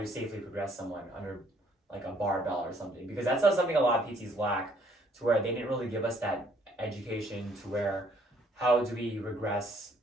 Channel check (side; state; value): both; normal; correlation 0.63